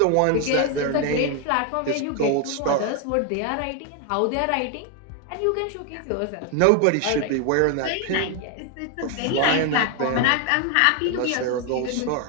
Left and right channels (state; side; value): different; both; correlation 0.01